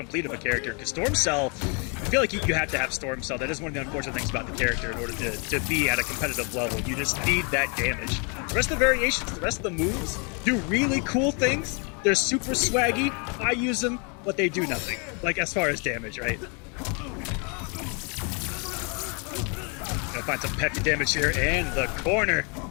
of a character. Because Storm Cell, I feel like you have to have Storm Cell. That is one of the unfortunate things about the character in order to be at a competitive level. You just need that damage. The rest of the variations, the rest of the moves do really cool things. They're super swaggy. I use them, but they do nothing. Like, as far as damage, right? Gonna find some peppy damage here, and the corner.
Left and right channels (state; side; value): quieter; right; 35.0 dB